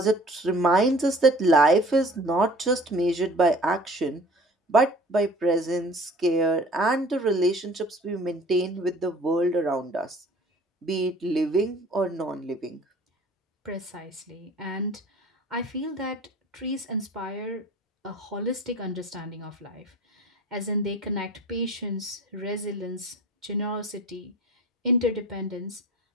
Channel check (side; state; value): both; normal; correlation 0.48